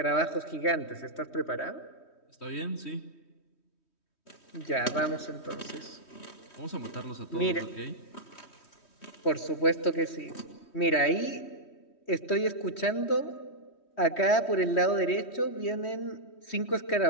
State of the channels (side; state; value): right; late; 3.1 ms